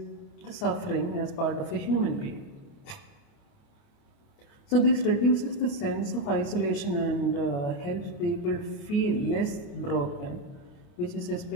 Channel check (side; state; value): right; late; 28 ms